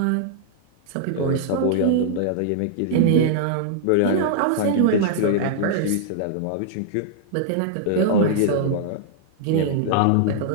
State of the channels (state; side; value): different; both; correlation -0.01